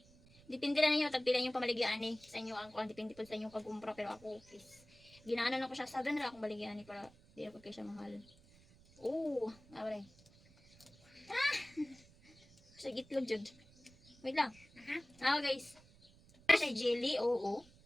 Depende na ninyo, tagpila yung pamaligyan eh. Sa inyo ang kwan, depende po sa inyong pag-umpra. Pero ako, ginaano na ko siya. 7 na akong baligyan eh para di ako kayo siya mahal. Oh, abray. Sa gitlog jud. Wait lang. Guys. Siya jelly, oo.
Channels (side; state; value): right; noise; rumble, 25 dB below the sound